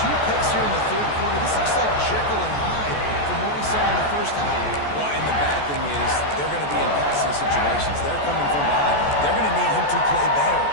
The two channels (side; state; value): right; late; 14 ms